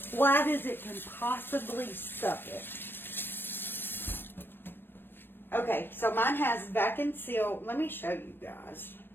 as it can possibly suck it. Okay, so mine has vac and seal. Let me show you guys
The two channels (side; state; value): right; late; 0.098 ms